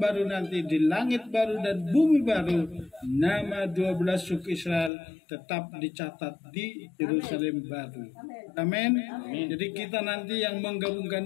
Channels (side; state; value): right; drops out; at 4.9 s